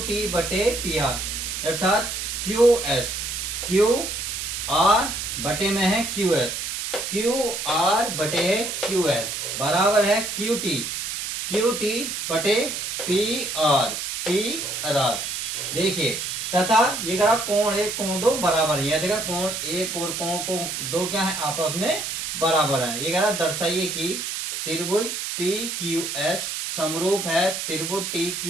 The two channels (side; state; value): right; noise; hiss, 4 dB below the sound